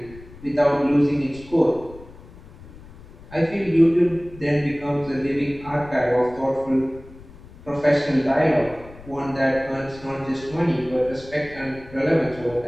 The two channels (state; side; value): noise; left; rumble, 19 dB below the sound